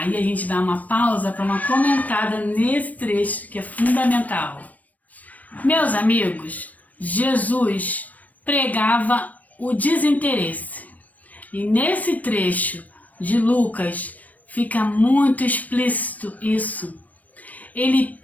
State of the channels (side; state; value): right; late; 0.074 ms